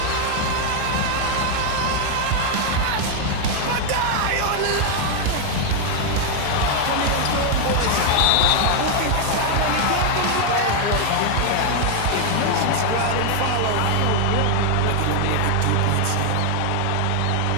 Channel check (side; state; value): both; different; correlation 0.00